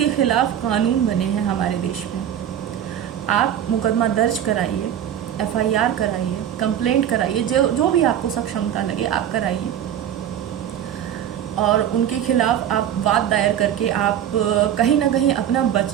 खिलाफ कानून बने हैं हमारे देश में। आप मुकदमा दर्ज कराइए, FIR कराइए, कंप्लेंट कराइए, जो भी आपको सक्षमता लगे आप कराइए और उनके खिलाफ आप वाद दायर करके आप कहीं ना कहीं अपना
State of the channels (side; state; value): left; quieter; 10.1 dB